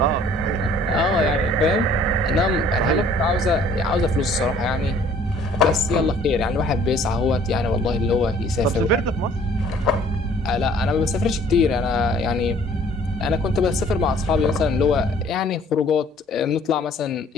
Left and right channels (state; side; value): normal; both; correlation 0.56